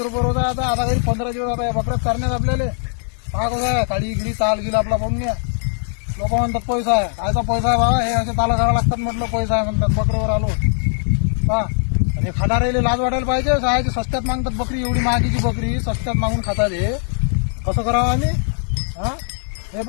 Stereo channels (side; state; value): right; silent; digital silence